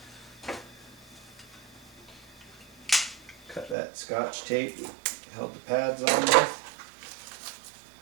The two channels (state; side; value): drops out; left; at 3.8 s